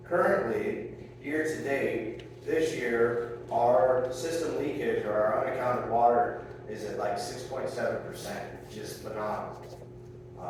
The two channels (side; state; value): both; identical; correlation 1.00